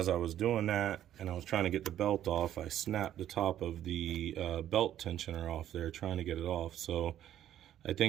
I was doing that and I was trying to get the belt off, I snapped the top of the belt tensioner off there trying to get it off. So I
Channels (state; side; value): quieter; left; 11.5 dB